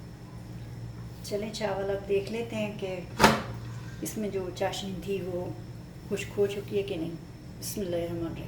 चलें चावल अब देख लेते हैं कि इसमें जो चाशनी थी वो खुश्क हो चुकी है कि नहीं।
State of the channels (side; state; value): both; identical; correlation 1.00